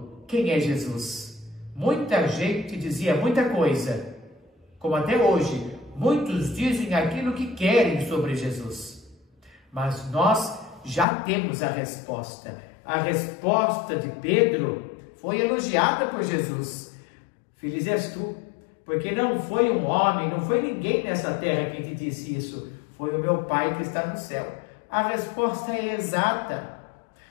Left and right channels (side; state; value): right; drops out; at 11.1 s